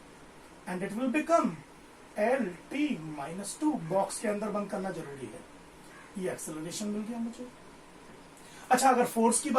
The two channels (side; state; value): both; identical; correlation 1.00